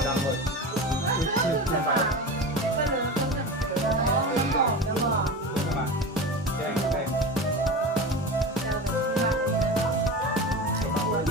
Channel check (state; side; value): normal; both; correlation 0.28